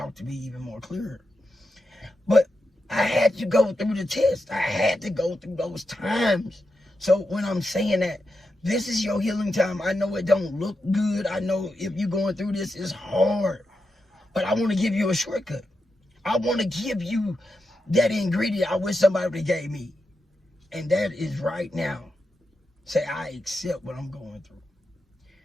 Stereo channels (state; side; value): normal; both; correlation 0.88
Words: to me even more clearer. But I had to go through the test. I had to go through those times. So when I'm saying that, this is your healing time. I know it don't look good. I know if you're going through this, it's hard. But I want to give you a shortcut. I want to give you that ingredient I wish somebody would have gave me. And that is right now. Say, I accept what I'm going through.